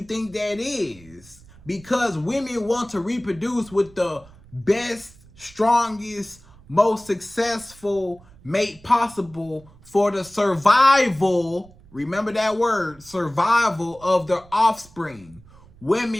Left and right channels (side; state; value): right; noise; rumble, 24 dB below the sound